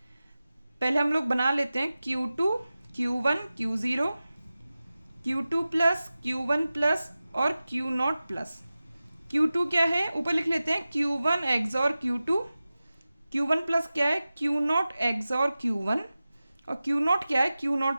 पहले हम लोग बना लेते हैं Q2 Q1 Q0 Q2 plus Q1 plus और Q0 प्लस। Q2 क्या है? ऊपर लिख लेते हैं Q1 XOR Q2। Q1 plus क्या है? Q0 XOR Q1। और Q0 क्या है?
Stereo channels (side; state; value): both; inverted; correlation -0.96